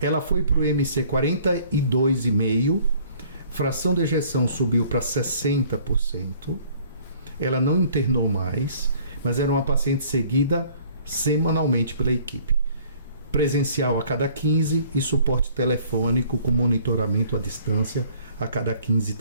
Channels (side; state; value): both; inverted; correlation -0.55